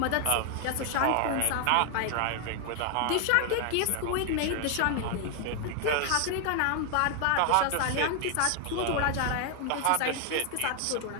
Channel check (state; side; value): different; both; correlation 0.00